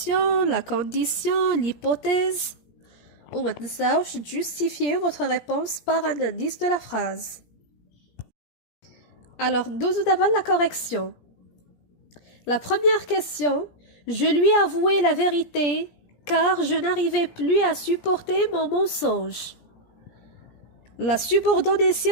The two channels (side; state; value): right; late; 17 ms